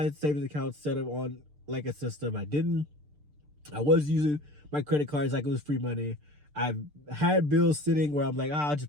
savings account set up on like a system. I was using my credit cards like it was free money. I've had bills sitting where I'm like, I'll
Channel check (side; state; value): left; late; 6.7 ms